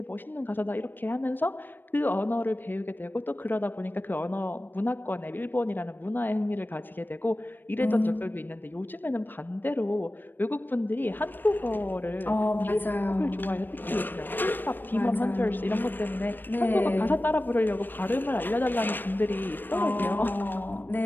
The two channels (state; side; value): late; right; 0.093 ms